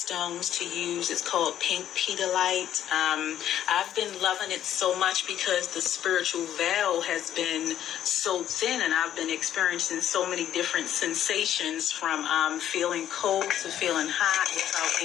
to use. It's called pink pedalite. I've been loving it so much because the spiritual veil has been so thin and I've been experiencing so many different sensations from feeling cold to feeling hot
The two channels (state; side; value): quieter; right; 11.0 dB